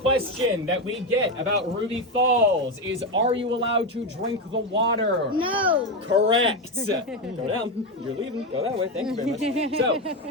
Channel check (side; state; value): both; normal; correlation 0.12